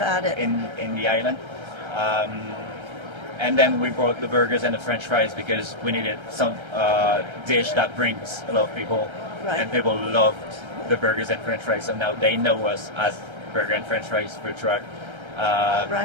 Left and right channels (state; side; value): late; left; 1.3 ms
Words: it. in the island. And then we brought the burgers and the French fries because we needed some dish that brings a lot of people, Right. and people loved the burgers and French fries. So now they know us as Burger and French Fries food truck.